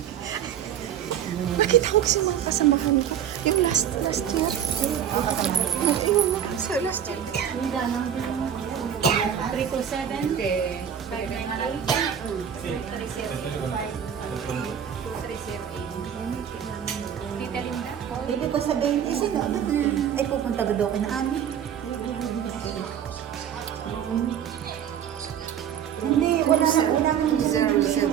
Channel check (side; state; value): left; quieter; 9.1 dB